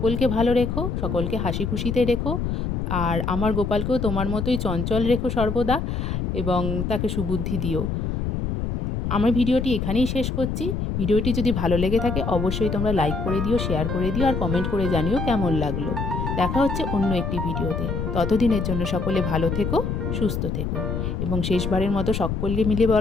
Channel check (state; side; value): noise; left; rumble, 2 dB below the sound